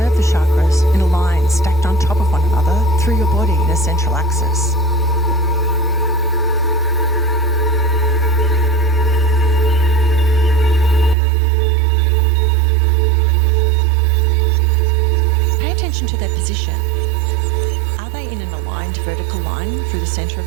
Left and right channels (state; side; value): drops out; left; at 11.2 s